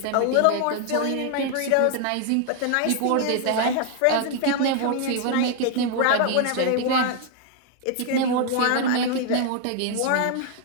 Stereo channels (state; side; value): different; both; correlation 0.00